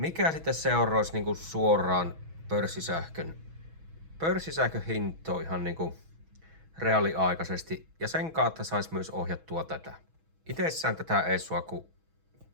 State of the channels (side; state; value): left; late; 6.2 ms